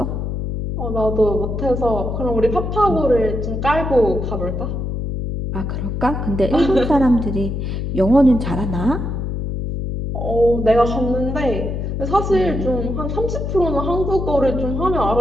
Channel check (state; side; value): noise; left; hum, 3 dB below the sound